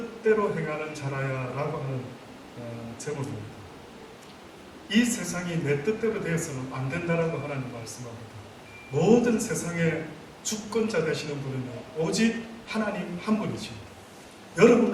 행하는 자라야 라고 하는 제목입니다. 이 세상이 내 뜻대로 되어서는 안 된다라고 하나님 말씀합니다. 모든 세상의 주권자 되시는 분은 오직 하나님 한 분이지.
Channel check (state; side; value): identical; both; correlation 1.00